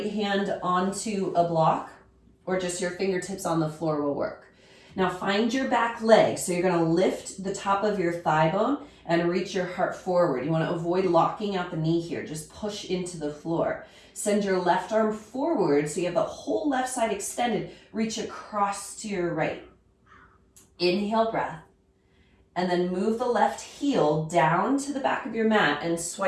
hand onto a block or just your fingertips on the floor will work. Now find your back leg. So you're going to lift the top of your thigh bone and reach your heart forward. You want to avoid locking out the knee here. Just push into the floor. Send your left arm forward so you have the whole left side extended. Reach across to your right. Inhale, breath. And then move the left heel down to the back of your mat and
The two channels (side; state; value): both; identical; correlation 1.00